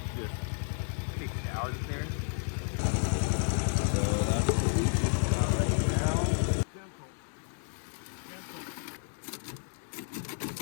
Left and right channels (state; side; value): silent; right; 57 dB below the other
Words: just picked out of there. So that's what we just got right now.